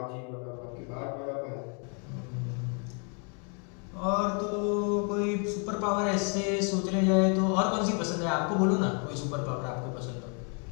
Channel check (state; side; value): quieter; right; 39.0 dB